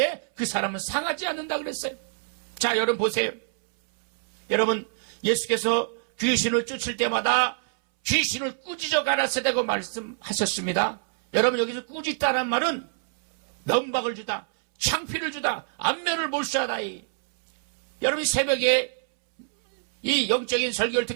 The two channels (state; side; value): silent; left; 61 dB below the other